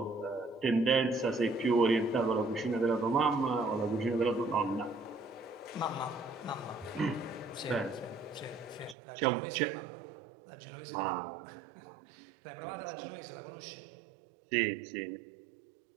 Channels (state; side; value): drops out; left; at 9.0 s